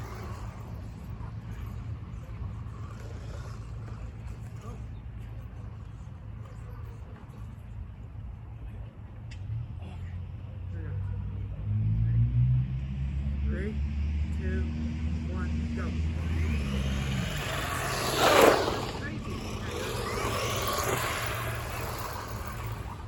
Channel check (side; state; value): both; identical; correlation 1.00